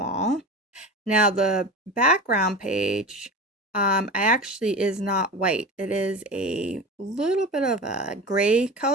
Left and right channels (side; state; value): both; normal; correlation 0.30